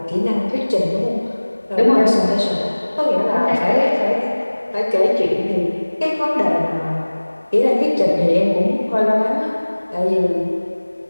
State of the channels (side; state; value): both; inverted; correlation -1.00